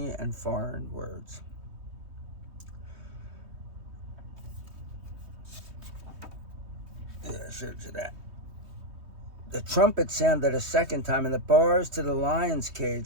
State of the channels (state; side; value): late; left; 3.2 ms